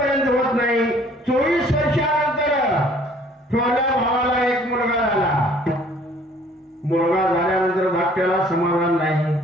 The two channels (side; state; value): both; normal; correlation 0.56